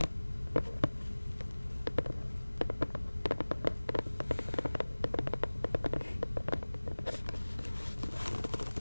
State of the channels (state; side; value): inverted; both; correlation -1.00